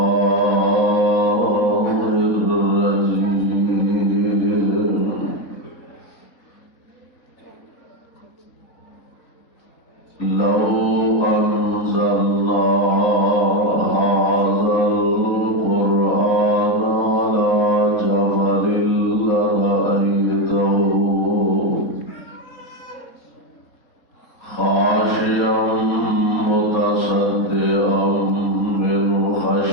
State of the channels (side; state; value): right; late; 3.8 ms